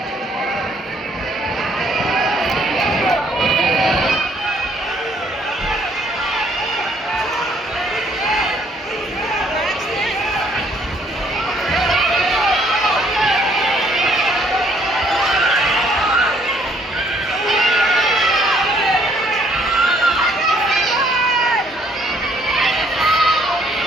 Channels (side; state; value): both; normal; correlation 0.65